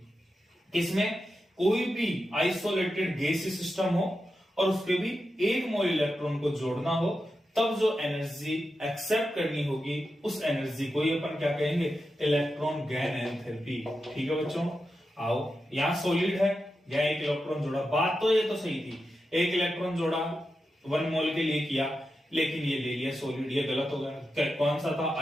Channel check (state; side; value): normal; both; correlation 0.89